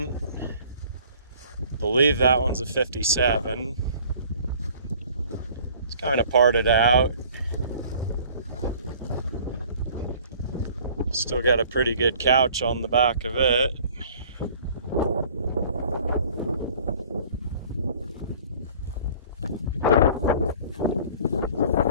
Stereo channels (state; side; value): inverted; both; correlation -0.51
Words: Believe that one's a 57. It's kind of parted out. Still got a pretty good couch on the back of it.